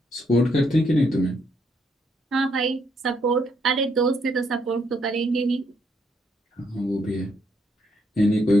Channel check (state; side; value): normal; both; correlation 0.74